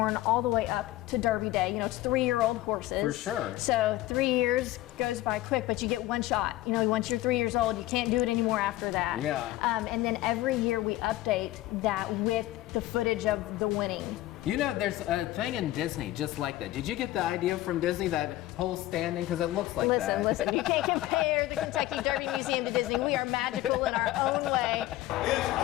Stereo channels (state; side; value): quieter; right; 16.2 dB